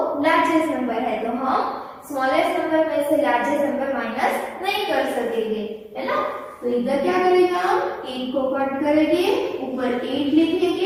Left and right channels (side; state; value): both; identical; correlation 1.00